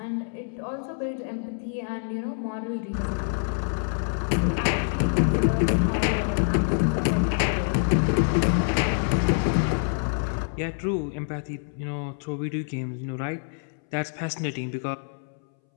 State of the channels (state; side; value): silent; right; 61 dB below the other